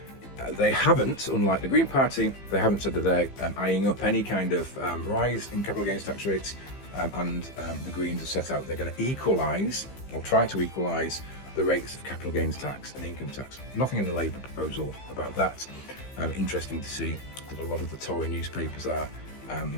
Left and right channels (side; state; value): right; late; 15 ms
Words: They haven't, unlike the Green Party, they haven't said that they're eyeing up any kind of rise in capital gains tax rates, and the Greens have set out they're going to equalise, or try to equalise, the rates of capital gains tax and income tax. Nothing in the Labour proposal about that. Interesting to see that a lot of the Tory newspapers are